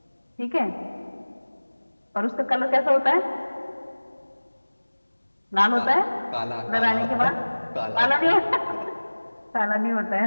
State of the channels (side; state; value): both; inverted; correlation -1.00